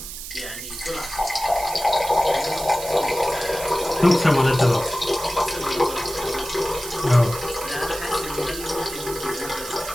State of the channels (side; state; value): right; noise; hiss, 10 dB below the sound